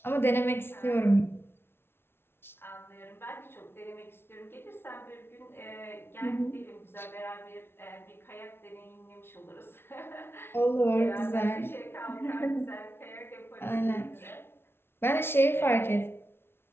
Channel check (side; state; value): right; late; 0.12 ms